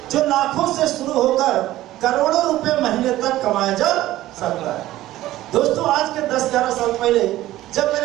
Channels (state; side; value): quieter; left; 15.3 dB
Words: जो लाखों से शुरू होकर करोड़ों रुपए महीने तक कमाया जा सकता है। दोस्तों आज के 10-11 साल पहले जब